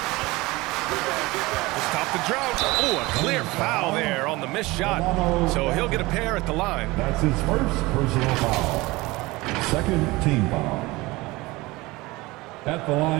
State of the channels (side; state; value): left; quieter; 21.5 dB